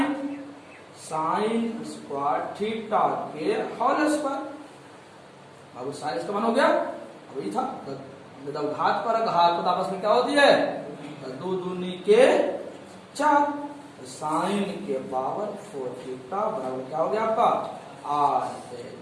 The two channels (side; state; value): both; identical; correlation 1.00